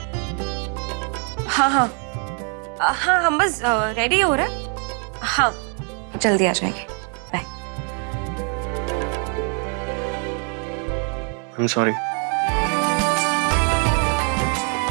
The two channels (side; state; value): left; quieter; 39.5 dB